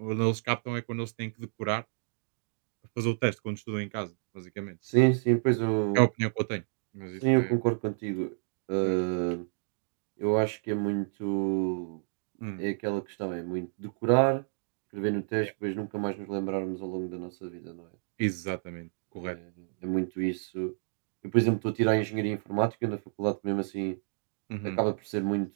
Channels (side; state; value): left; silent; digital silence